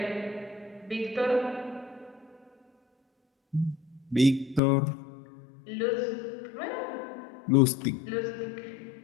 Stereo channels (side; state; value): right; drops out; at 4.6 s